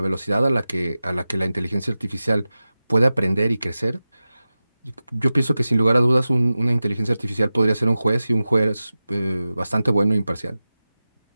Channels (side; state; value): both; inverted; correlation -0.95